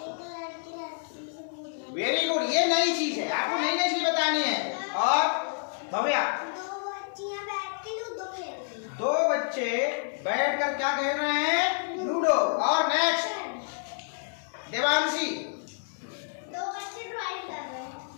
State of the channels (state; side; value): silent; right; 59 dB below the other